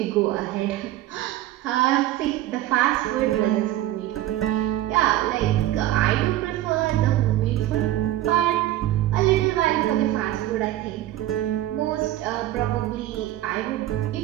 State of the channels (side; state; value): left; quieter; 14.4 dB